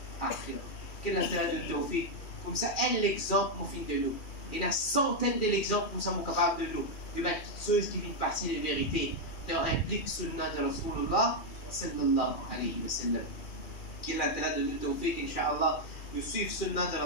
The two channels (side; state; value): right; late; 2.4 ms